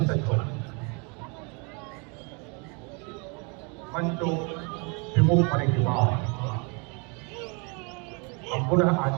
सज्ज होगा। मंचो विमुख होने के बाद हम पुनः आज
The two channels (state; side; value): quieter; left; 32.8 dB